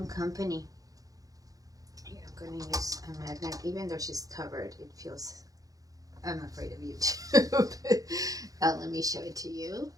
company. Here, I'm going to use a magnet. Even though she's covered, it feels... I'm afraid of YouTube. Let me show it to you.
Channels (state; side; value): late; left; 0.17 ms